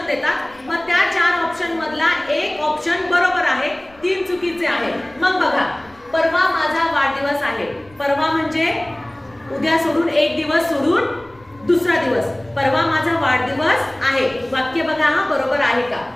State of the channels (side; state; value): left; noise; rumble, 28 dB below the sound